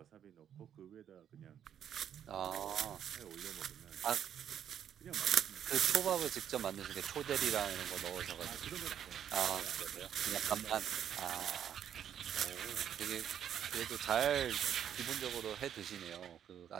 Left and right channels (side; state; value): left; quieter; 9.5 dB